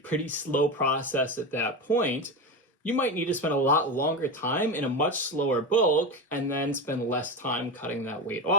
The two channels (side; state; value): both; normal; correlation 0.20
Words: slow process at that point, you might need to spend a lot longer time in a much slower bulk and then spend less time cutting that weight